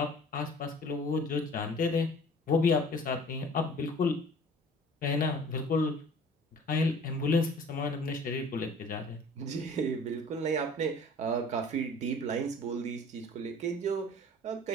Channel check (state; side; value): normal; both; correlation 0.48